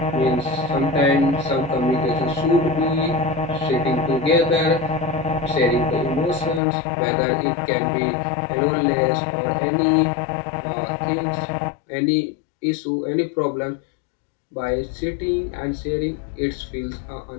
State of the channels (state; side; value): drops out; right; at 6.6 s